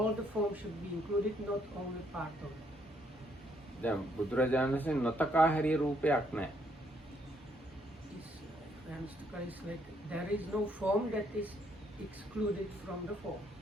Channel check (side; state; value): both; normal; correlation 0.71